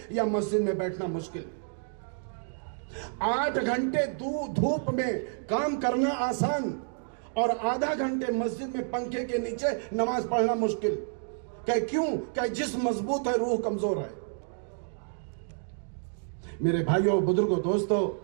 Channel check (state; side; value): silent; left; digital silence